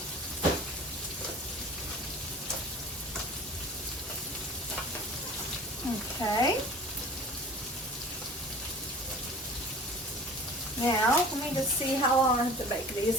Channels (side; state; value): both; normal; correlation 0.42